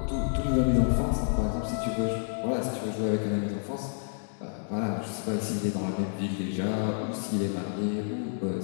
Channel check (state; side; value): silent; right; digital silence